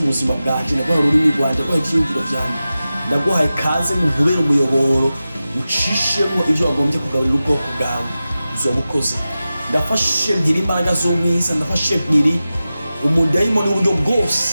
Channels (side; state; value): both; inverted; correlation -0.94